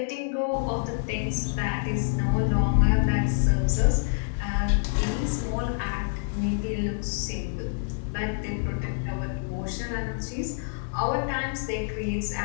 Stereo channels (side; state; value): right; silent; 60 dB below the other